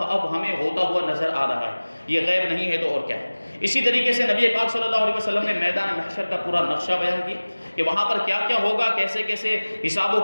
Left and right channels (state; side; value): inverted; both; correlation -1.00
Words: اب ہمیں ہوتا ہوا نظر آ رہا ہے۔ یہ غیب نہیں ہے تو اور کیا ہے۔ اسی طریقے سے نبی پاک صلی اللہ علیہ وسلم نے میدان محشر کا پورا نقشہ بیان کیا کہ وہاں پر کیا کیا ہوگا، کیسے کیسے حساب و